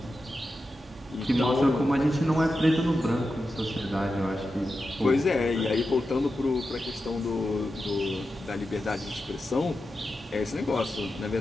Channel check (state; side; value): normal; both; correlation 0.90